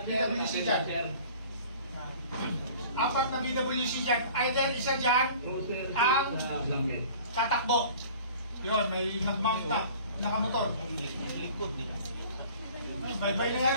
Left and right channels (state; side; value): inverted; both; correlation -0.46